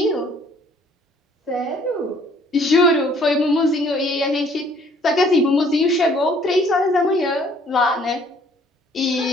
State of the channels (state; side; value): normal; both; correlation 0.59